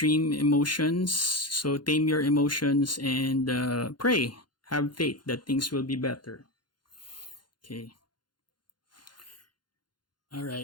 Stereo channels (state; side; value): late; right; 0.71 ms